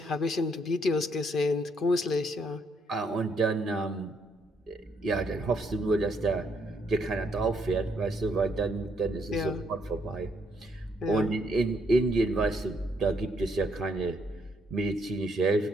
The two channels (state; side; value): normal; both; correlation 0.72